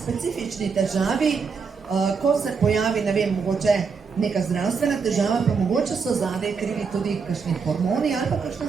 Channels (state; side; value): quieter; left; 5.5 dB